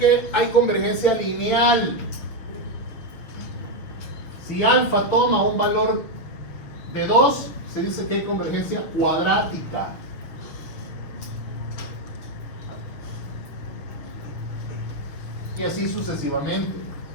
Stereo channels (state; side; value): late; right; 6.7 ms